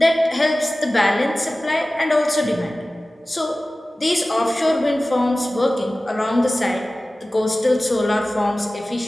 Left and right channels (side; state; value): both; normal; correlation 0.97